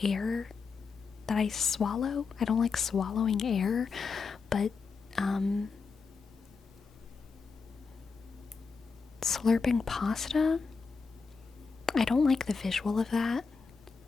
air that I swallow. I don't like swallowing air, but slurping pasta, I don't like the visual of that.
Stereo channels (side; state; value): right; quieter; 5.0 dB